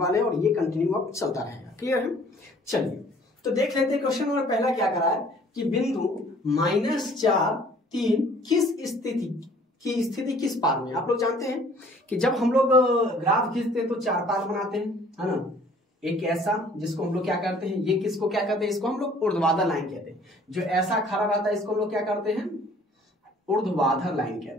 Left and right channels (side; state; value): both; normal; correlation 0.55